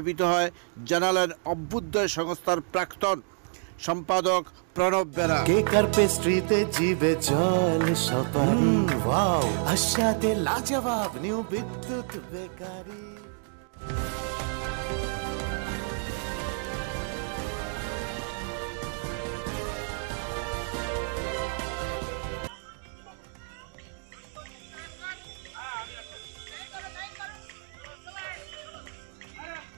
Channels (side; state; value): left; silent; 59 dB below the other